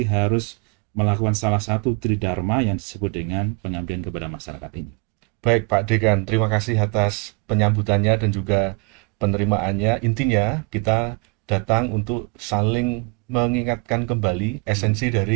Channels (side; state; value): left; quieter; 32.0 dB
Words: harus melakukan salah satu Tridharma yang disebut dengan pengabdian kepada masyarakat ini? Baik Pak Dekan, terima kasih atas penyambutannya dan juga penerimaannya. Intinya kita datang untuk saling mengingatkan kembali esensi